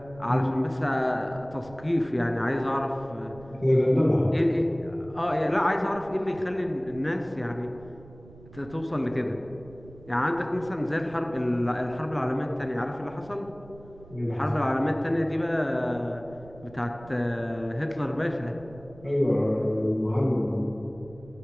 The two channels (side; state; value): right; noise; rumble, 20 dB below the sound